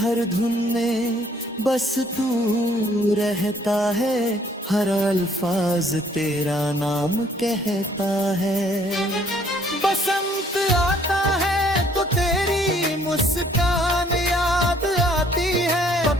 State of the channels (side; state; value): both; normal; correlation 0.62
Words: धुन में बस तू रहता है, हर अल्फाज तेरा नाम कहता है। बसंत आता है तो तेरी मुस्कान याद आती है,